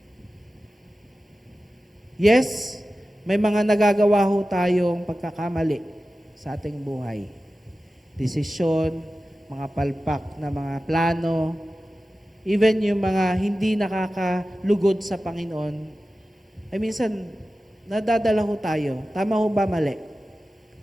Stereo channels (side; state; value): both; normal; correlation 0.95